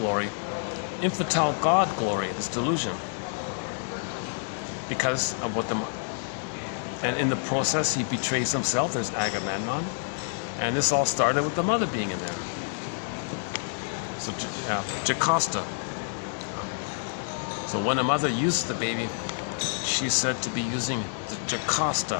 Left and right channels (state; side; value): silent; right; digital silence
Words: infantile God glory, this delusion. Because of what and in the process he betrays himself. There's Agamemnon, and this all started with the mother being in there. So Jocasta. So when a mother uses the baby, she's said to be using the